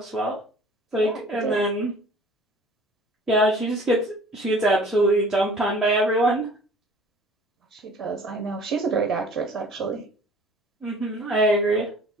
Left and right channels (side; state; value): both; normal; correlation 0.49